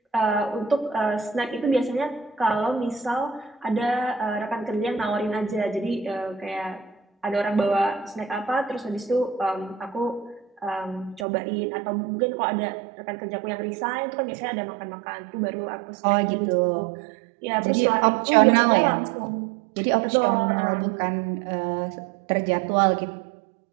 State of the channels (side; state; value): left; drops out; at 11.2 s